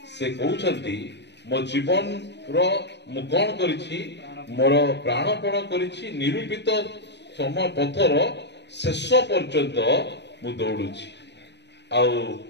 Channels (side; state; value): right; late; 0.50 ms